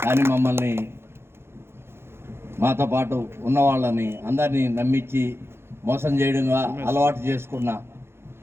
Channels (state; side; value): late; left; 0.12 ms